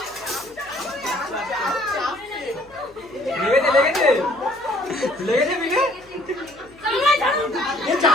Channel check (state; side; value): noise; left; hum, 28 dB below the sound